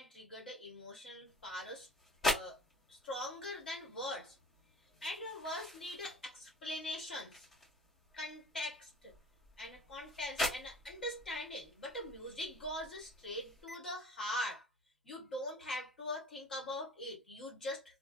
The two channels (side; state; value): both; normal; correlation 0.46